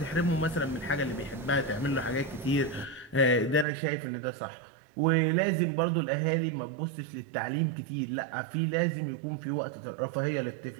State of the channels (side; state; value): left; drops out; at 3.7 s